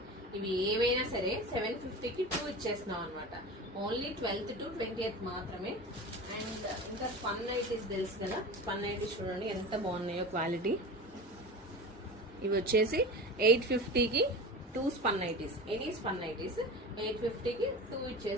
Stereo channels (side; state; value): both; normal; correlation 0.31